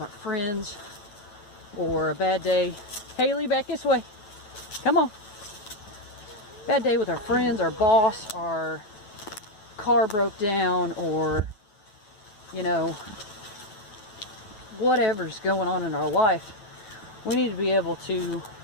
friends or a bad day... Haley, back this way. Come on. Bad day with our friends, our boss, our car broke down, or, you know, whatever's going on in our life. We need to be able to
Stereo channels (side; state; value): right; late; 9.2 ms